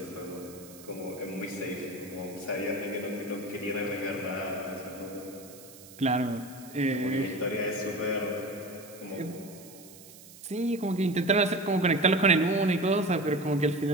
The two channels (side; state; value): right; noise; hiss, 19 dB below the sound